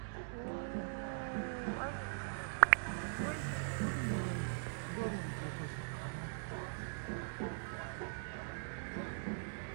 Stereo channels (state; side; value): silent; left; digital silence